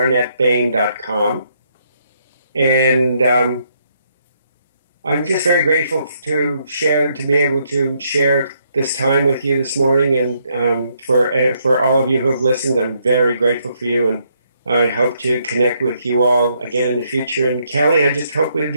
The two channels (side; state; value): both; inverted; correlation -0.73